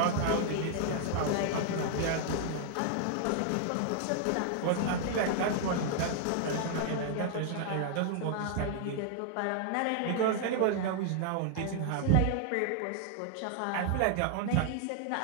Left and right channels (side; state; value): both; different; correlation 0.00